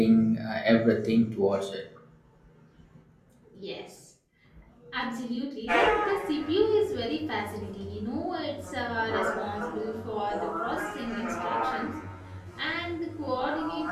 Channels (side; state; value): both; identical; correlation 1.00